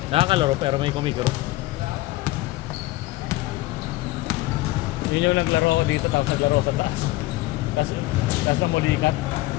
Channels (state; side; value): quieter; right; 18.7 dB